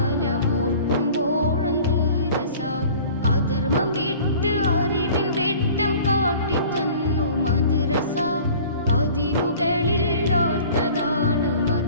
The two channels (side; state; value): both; inverted; correlation -0.46